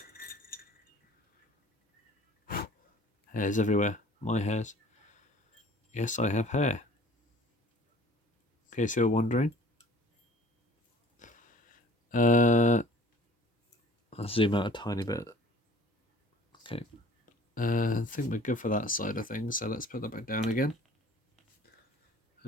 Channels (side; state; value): both; normal; correlation 0.50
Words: Hairs everywhere. My hairs. Yes, I have hair. In case you're wondering. I'll zoom out a tiny bit. Okay. I think we're good for that side of things, so let's put that back down again.